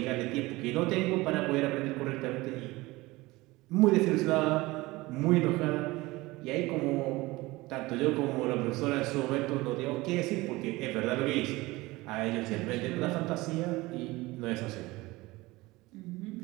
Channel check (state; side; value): quieter; left; 20.8 dB